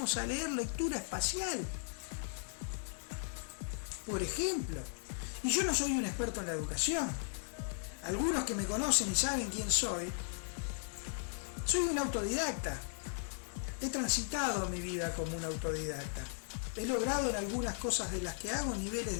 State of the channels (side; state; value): right; silent; 53 dB below the other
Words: a leer lectura espacial? Por ejemplo, y yo no soy un experto en la educación. Algunos que me conocen y saben quién soy un autodidacta. He transitado mi vida como un autodidacta. He logrado en algunas cosas de las que hago niveles